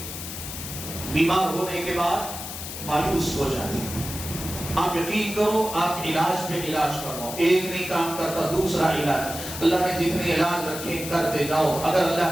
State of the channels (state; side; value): noise; left; hiss, 8 dB below the sound